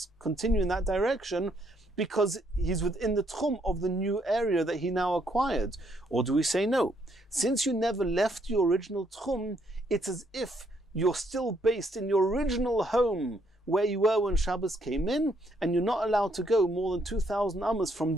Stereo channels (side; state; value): both; normal; correlation 0.71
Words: continue in that direction, because he's within the tchum of the new area that he now acquired? Or do we say no? Since you never left your original tchum, it's as if you're still based in your original home where you were when Shabbos came in, and you're not allowed to go more than 2,000 amas from